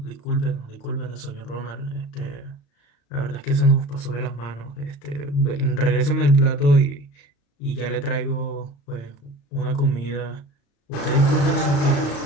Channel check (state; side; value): late; right; 35 ms